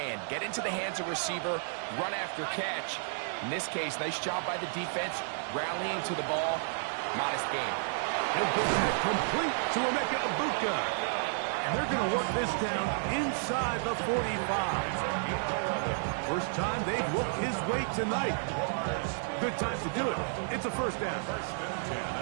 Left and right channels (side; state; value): left; silent; 57 dB below the other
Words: Get into the hands of receiver, run after catch. In this case, nice job by the defense, rallying to the ball. Modest game. He'll get that complete to Emeka Egbuka. And they're going to work this down inside the 45. First time they've looked his way tonight. Good time to do it. It's a first down. First and 10